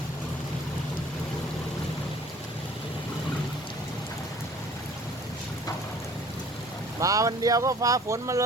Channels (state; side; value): normal; both; correlation 0.51